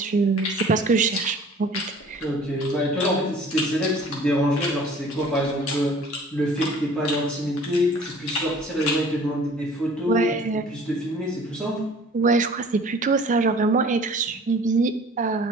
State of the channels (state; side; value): normal; both; correlation 0.49